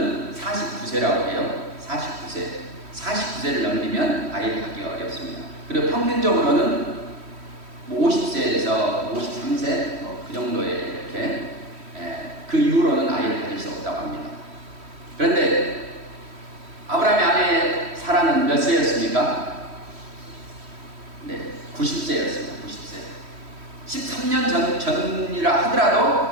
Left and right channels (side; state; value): left; late; 3.1 ms